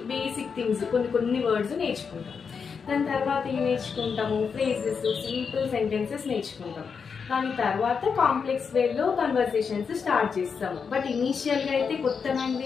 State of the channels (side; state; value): right; quieter; 5.9 dB